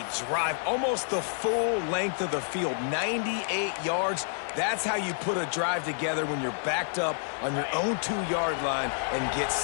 drive. Almost the full length of the field, 98 yards. That's how you put a drive together when you're backed up on your own 2-yard line and get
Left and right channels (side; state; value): right; silent; 58 dB below the other